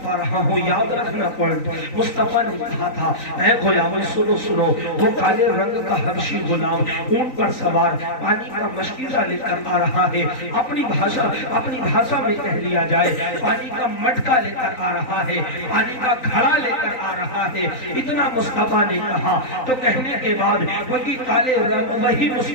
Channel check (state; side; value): late; right; 3.9 ms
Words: آ رہا ہوں، یاد رکھنا پوائنٹ۔ مصطفیٰ نے کہا تھا، اے غلاموں سنو، وہ کالے رنگ کا حبشی غلام اونٹ پر سوار پانی کا مشکیزہ لے کر آ رہا ہے، اپنی بھاشا میں کہہ لیا جائے پانی کا مٹکا لے کر آ رہا ہے، پانی کا گھڑا لے کر آ رہا ہے۔ اتنا مصطفیٰ نے کہا تو کہنے کے بعد وہی